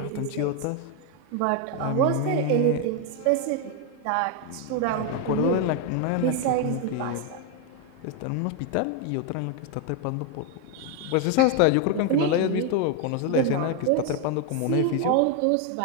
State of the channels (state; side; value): different; both; correlation 0.01